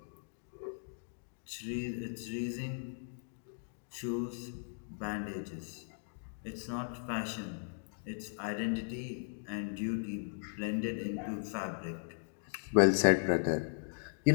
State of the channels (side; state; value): right; silent; digital silence